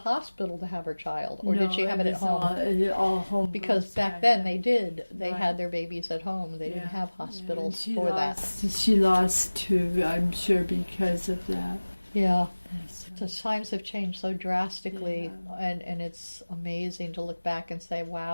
to have her child, or did she have it at home? All home. Because back then they did. They had their babies at home. They didn't have hospitals for that. She lost two, I'm sure, because of that. Yeah. The times have changed so drastically, and it's amazing to look back and say,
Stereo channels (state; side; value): inverted; both; correlation -1.00